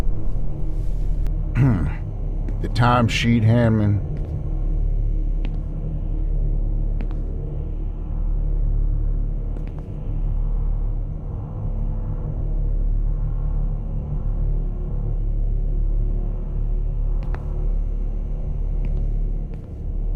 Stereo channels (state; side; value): identical; both; correlation 1.00